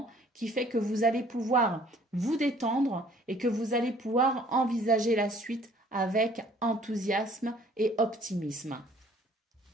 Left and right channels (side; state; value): both; normal; correlation 0.57